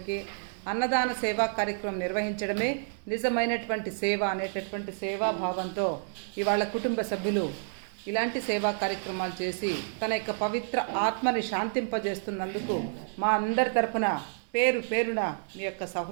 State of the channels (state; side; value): silent; left; digital silence